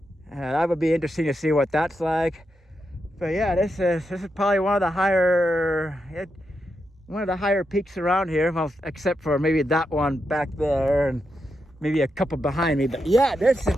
That would be interesting to see what that's like. But yeah, this is probably one of the higher peaks around here. Well, except for maybe that one back there and maybe a couple behind me. But yeah, this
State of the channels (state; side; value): normal; both; correlation 0.85